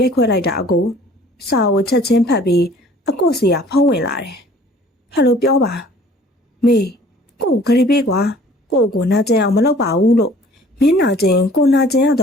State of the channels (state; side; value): normal; both; correlation 0.52